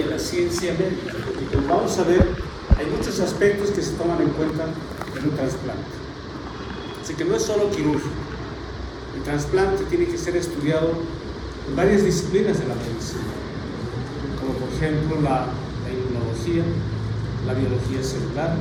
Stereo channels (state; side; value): identical; both; correlation 1.00